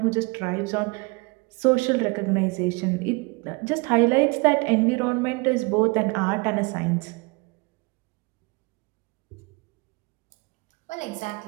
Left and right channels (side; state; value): left; quieter; 27.7 dB